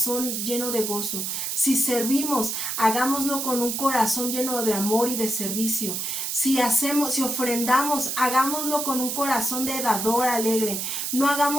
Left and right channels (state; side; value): noise; right; hiss, 2 dB below the sound